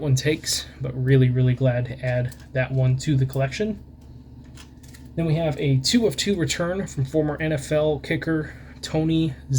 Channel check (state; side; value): identical; both; correlation 1.00